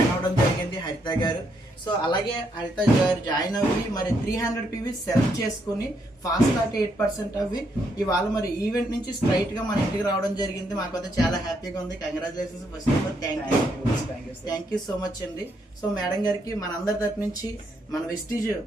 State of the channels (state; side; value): normal; both; correlation 0.75